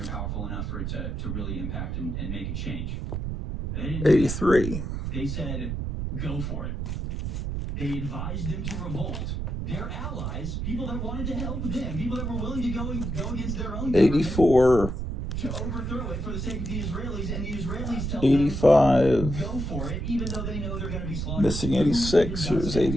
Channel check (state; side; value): noise; right; rumble, 3 dB below the sound